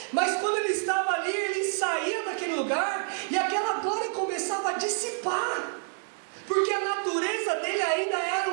mas quando ele estava ali, ele saía daquele lugar e aquela glória começava a dissipar, porque a natureza dele ainda era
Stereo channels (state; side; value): silent; left; 59 dB below the other